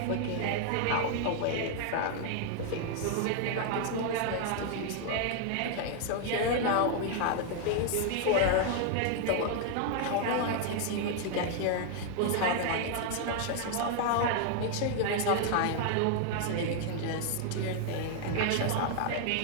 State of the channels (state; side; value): different; both; correlation 0.00